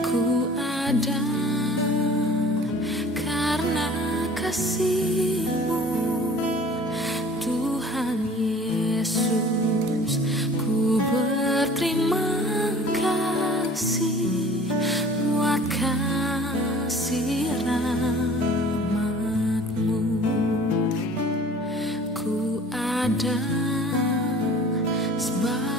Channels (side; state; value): both; normal; correlation 0.47